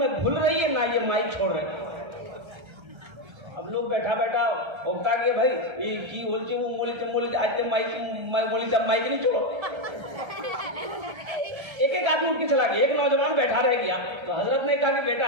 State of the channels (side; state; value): left; late; 1.3 ms